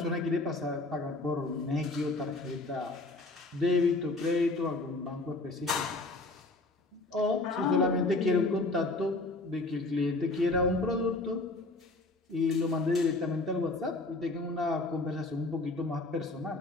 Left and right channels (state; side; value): quieter; right; 3.1 dB